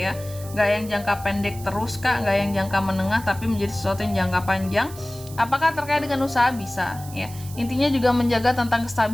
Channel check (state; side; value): noise; right; hiss, 17 dB below the sound